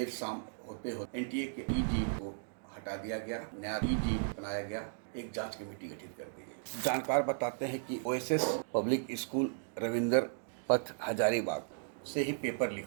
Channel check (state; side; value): silent; left; digital silence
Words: शाम होते होते एनटीए के ईडी को हटा दिया गया, नया ईडी बनाया गया, एक जांच कमेटी गठित कर दी गई। जानकार बताते हैं कि ओएसएस पब्लिक स्कूल रविंदर पथ हजारीबाग से ही पेपर लीक